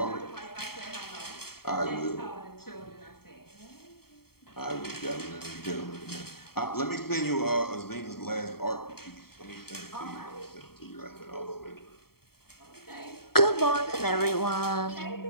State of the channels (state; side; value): late; right; 0.95 ms